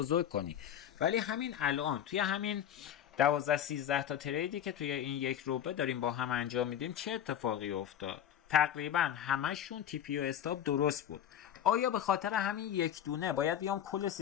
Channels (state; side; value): quieter; right; 10.1 dB